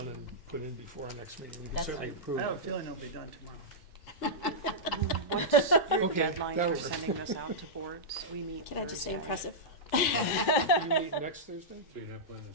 and put in before our next meeting. We can That's certainly fine. approve I have a it. feeling it'll be done tomorrow. What's your Okay, deadline that for works. sending this out to boards? We meet Can I just say Thursday. impressive? You meet next Thursday? So you're not planning to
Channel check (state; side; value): normal; both; correlation -0.11